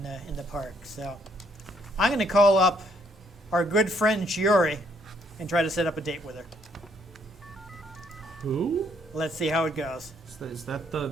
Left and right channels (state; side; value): normal; both; correlation 0.69